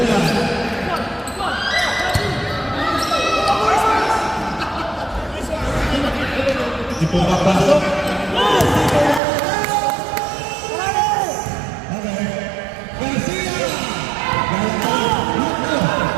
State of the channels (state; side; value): drops out; left; at 9.2 s